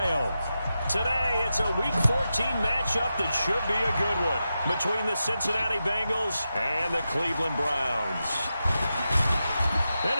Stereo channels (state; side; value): inverted; both; correlation -0.90